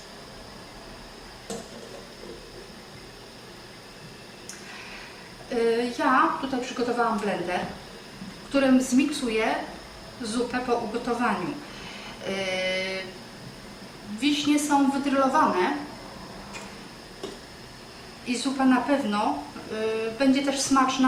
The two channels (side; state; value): both; identical; correlation 1.00